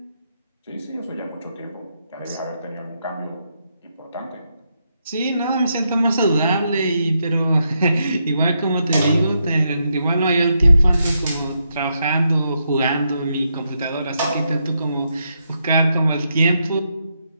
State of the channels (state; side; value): inverted; both; correlation -0.81